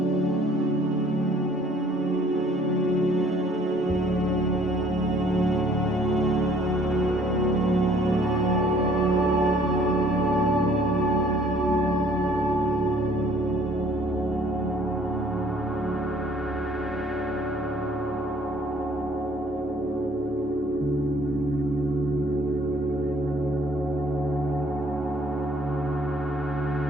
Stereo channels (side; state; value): both; normal; correlation 0.59